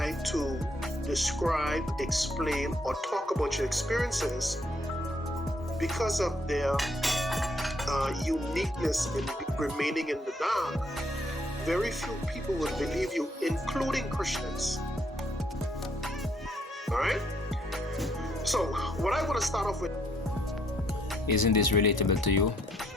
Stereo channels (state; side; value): normal; both; correlation 0.70